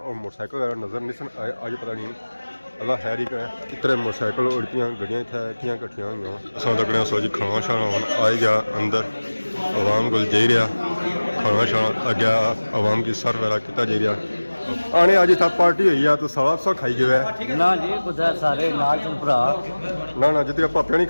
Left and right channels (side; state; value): both; inverted; correlation -1.00